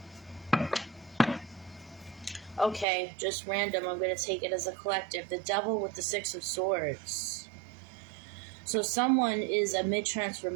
Okay, just random. I'm gonna take it as a collective. The Devil with the 6 of Swords. So someone is a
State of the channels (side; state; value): left; drops out; at 2.9 s